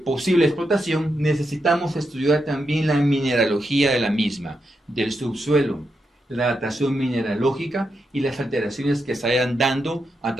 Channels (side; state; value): both; normal; correlation 0.84